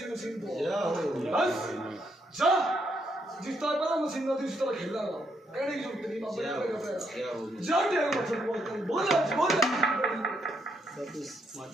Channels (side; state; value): both; normal; correlation 0.76